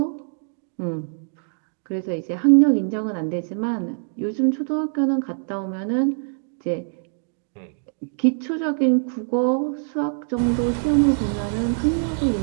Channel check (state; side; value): silent; left; digital silence